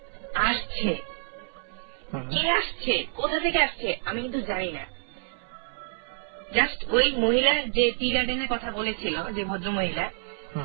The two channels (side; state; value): left; silent; 59 dB below the other